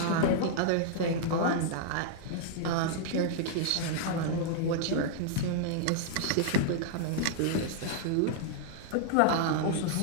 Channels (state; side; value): different; both; correlation -0.01